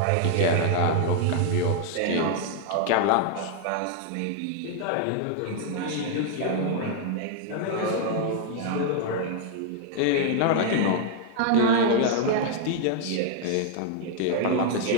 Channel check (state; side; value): different; both; correlation 0.00